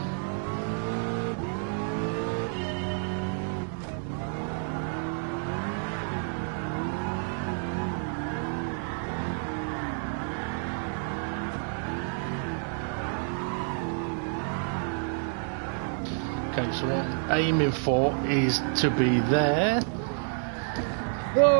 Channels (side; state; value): left; silent; 58 dB below the other